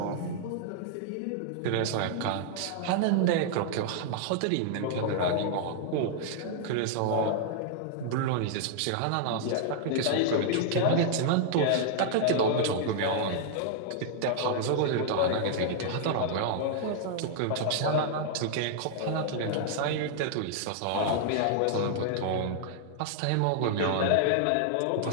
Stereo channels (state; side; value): different; both; correlation -0.01